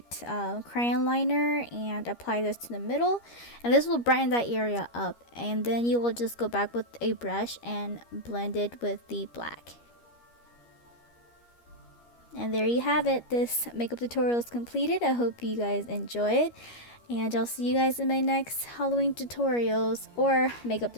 crayon liner and apply this to the middle. And this will brighten that area up. And then you will just go back with a brush and blend it with the black. And there you have it. This makeup tutorial is completed. I hope you guys enjoy it. And I'll see you guys in my next Halloween tutorials or makeup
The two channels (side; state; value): right; late; 13 ms